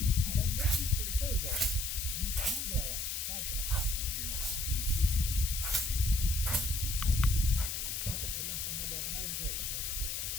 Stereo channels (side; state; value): left; noise; hiss, 2 dB below the sound